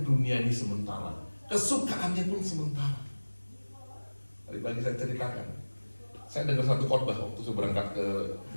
dunia ini sementara, kesukaannya pun sementara. Tadi pagi saya ceritakan, saya dengar satu khotbah waktu saya berangkat ke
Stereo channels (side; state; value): both; inverted; correlation -1.00